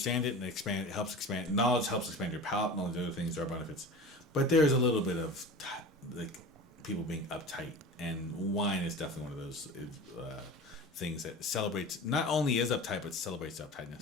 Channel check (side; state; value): both; normal; correlation 0.35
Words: it and expand. It helps expand knowledge. Helps expand your palate and all the other things. There are benefits, but there's a little bit of like people being uptight, and wine is definitely one of those things that celebrates. Not only is uptight, but celebrates